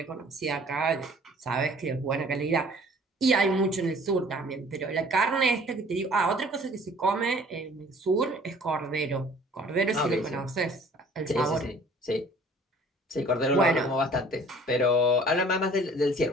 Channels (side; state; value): both; normal; correlation 0.52